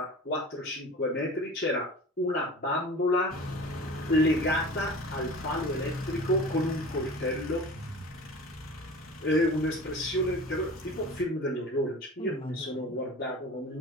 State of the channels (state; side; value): normal; both; correlation 0.38